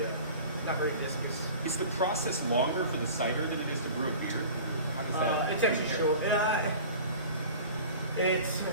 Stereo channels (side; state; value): both; inverted; correlation -0.40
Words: not very viscous. Is the process longer for the cider than it is to brew a beer? How does that It's actually short. It's